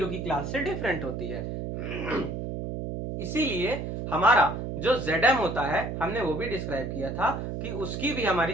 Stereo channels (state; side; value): noise; right; hum, 5 dB below the sound